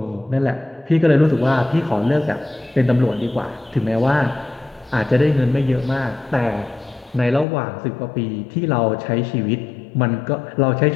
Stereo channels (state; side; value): drops out; right; at 7.5 s